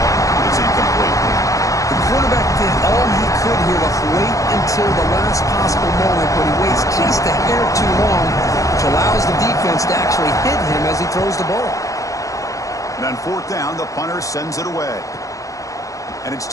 It's incomplete. The quarterback did all he could here to wait until the last possible moment, but he waits just a hair too long, which allows the defense to actually hit him as he throws the ball. And on fourth down, the punter sends it away. And it's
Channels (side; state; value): right; late; 0.16 ms